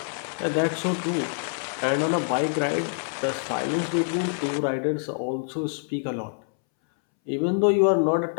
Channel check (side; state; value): right; silent; 61 dB below the other